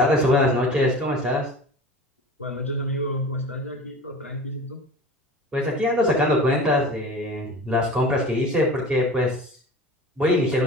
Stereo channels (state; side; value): normal; both; correlation 0.38